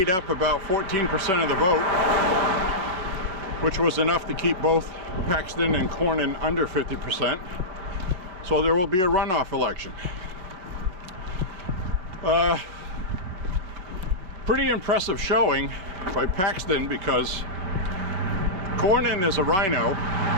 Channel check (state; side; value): late; left; 5.2 ms